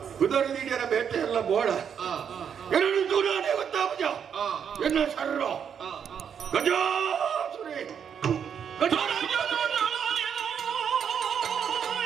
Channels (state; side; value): quieter; left; 7.8 dB